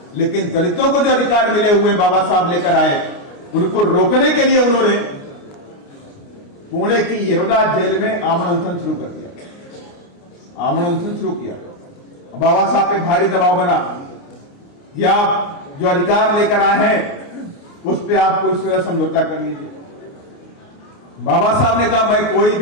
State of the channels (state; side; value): late; right; 29 ms